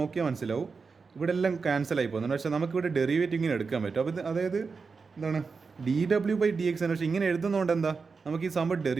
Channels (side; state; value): left; quieter; 4.9 dB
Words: മനസ്സിലാവും ഇവിടെ എല്ലാം ക്യാൻസൽ ആയി പോകുന്നുണ്ട്. പക്ഷേ നമുക്കിവിടെ ഡെറിവേറ്റീവ് ഇങ്ങനെ എടുക്കാൻ പറ്റും. അപ്പോൾ അതായത് എന്താണ് ഡി ഡബ്ല്യു ബൈ ഡി എക്സ് ആണ്. പക്ഷേ ഇങ്ങനെ എഴുതുന്നതുകൊണ്ട് എന്താ, നമുക്ക് ഈ സംഭവം